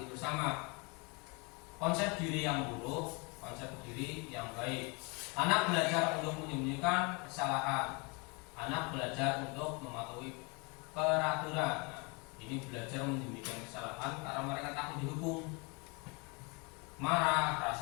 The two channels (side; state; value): right; quieter; 30.2 dB